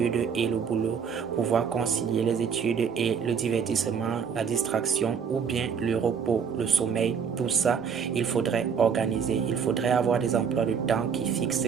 et le boulot, pouvoir concilier les études et le divertissement, la distraction ou bien le repos, le sommeil. Tout ça, il faudrait organiser. Il faudrait avoir des emplois de temps qui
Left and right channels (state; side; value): quieter; left; 6.7 dB